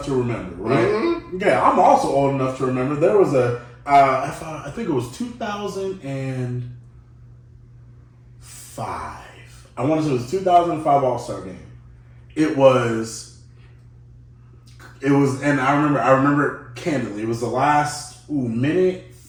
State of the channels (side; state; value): both; identical; correlation 1.00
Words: to remember, right? Mm-hmm. Yeah, I'm also old enough to remember. There was I think it was 2005. I want to say it was 2005 All-Star game. It was, and I remember candidly, it was the last minute